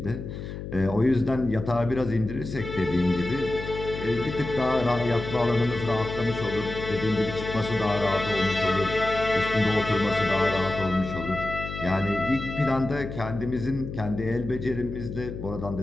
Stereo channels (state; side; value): noise; left; hum, 8 dB below the sound